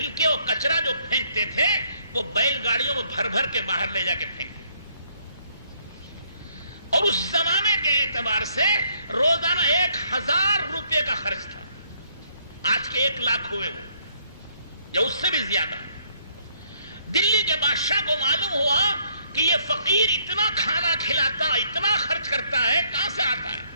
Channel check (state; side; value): inverted; both; correlation -0.68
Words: اور کچرا جو پھینکتے تھے وہ بیل گاڑیوں میں بھر بھر کے باہر لے جا کے پھینکتے، اور اس زمانے کے اعتبار سے روزانہ 1000 روپے کا خرچ تھا۔ آج کے 1 لاکھ ہوئے وہ، یا اس سے بھی زیادہ۔ دلی کے بادشاہ کو معلوم ہوا کہ یہ فقیر اتنا کھانا کھلاتا، اتنا خرچ کرتا ہے، کہاں سے آتا ہے؟